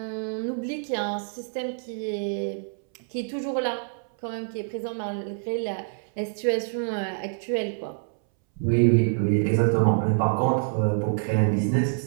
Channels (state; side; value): silent; left; 61 dB below the other